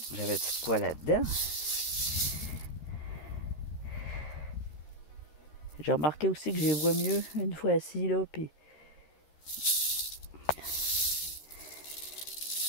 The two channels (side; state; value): right; late; 13 ms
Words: J'avais tout quoi là-dedans? J'ai remarqué aussi que je les vois mieux une fois assis, là, puis...